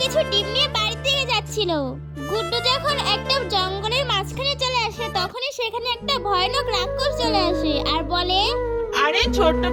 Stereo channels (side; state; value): both; identical; correlation 1.00